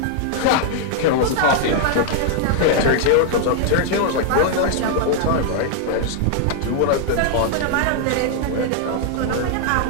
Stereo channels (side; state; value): both; different; correlation 0.00